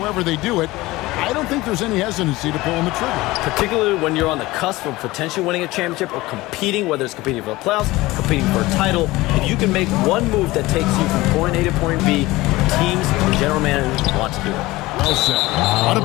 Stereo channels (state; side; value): quieter; right; 19.5 dB